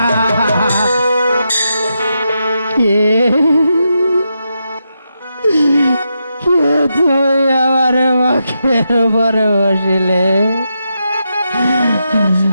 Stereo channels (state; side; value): inverted; both; correlation -0.85